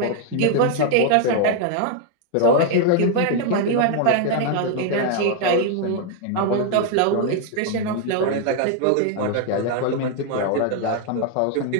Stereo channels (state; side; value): different; both; correlation 0.00